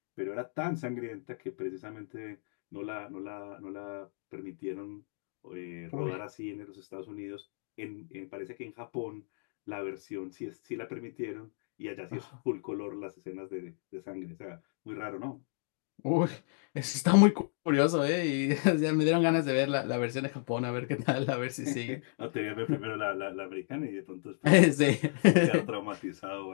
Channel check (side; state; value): right; silent; digital silence